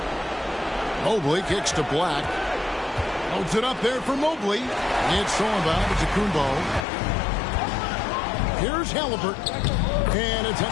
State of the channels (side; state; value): right; drops out; at 6.9 s